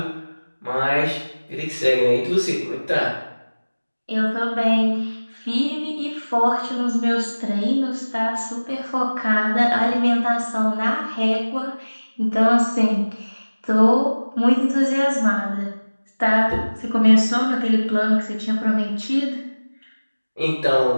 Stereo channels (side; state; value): both; inverted; correlation -1.00